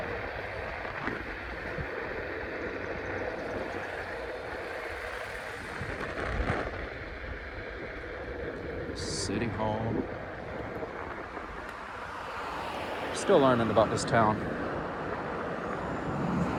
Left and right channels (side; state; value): both; identical; correlation 1.00